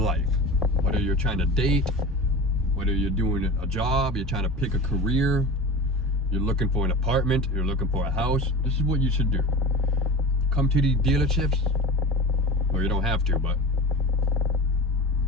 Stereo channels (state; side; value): normal; both; correlation 0.32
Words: Whether you're trying to date, whether you're doing a job, you're trying to pick a career, you're looking for an apartment, you're looking for a house, this is what you should do. Come to these dealerships, or you don't have to, but